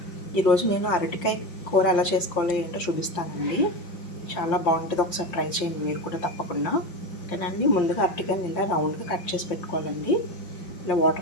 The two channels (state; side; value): late; right; 5.7 ms